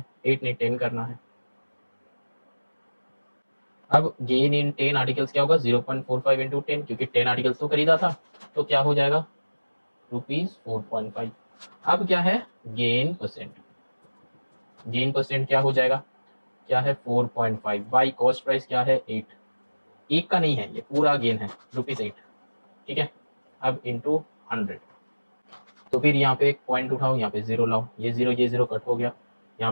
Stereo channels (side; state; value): both; inverted; correlation -1.00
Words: 8 ने 10 करना है। अब गेन इन 10 आर्टिकल्स क्या होगा, 0.45 इंटू 10, क्योंकि 10 आर्टिकल्स तो खरीदा था, तो क्या हो जाएगा ₹4.5। अब क्या है गेन परसेंट, गेन परसेंट क्या हो जाएगा, क्या है 4.5 बाई कॉस्ट प्राइस क्या है 8। एक का नहीं है, ये पूरा गेन है ₹8। ठीक है, अब इंटू 100, तो फिर यहाँ पे एक पॉइंट उठाओ, यहाँ पे 0 लाओ, ये 0 कट हो गया,